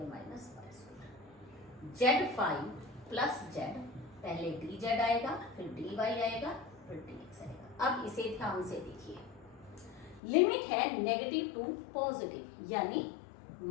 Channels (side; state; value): right; drops out; at 10.2 s